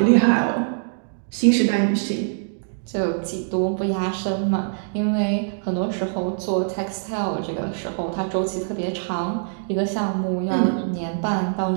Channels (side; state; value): left; silent; digital silence